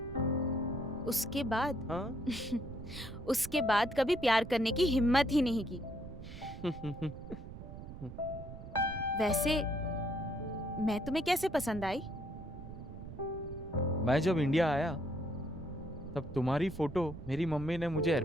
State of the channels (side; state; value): right; noise; rumble, 12 dB below the sound